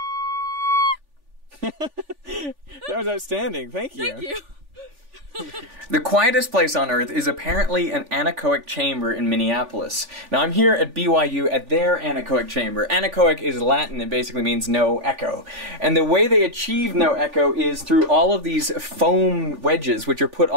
That was outstanding. Thank you. Thank you. The quietest place on Earth is apparently an anechoic chamber in Minneapolis. Now I'm here at BYU at their anechoic chamber. Anechoic is Latin, it basically means no echo. And the way they achieve no echo is through all of these foam wedges which are put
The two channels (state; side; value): late; left; 3.4 ms